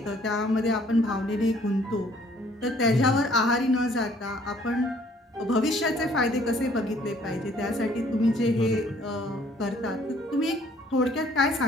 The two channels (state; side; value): normal; both; correlation 0.60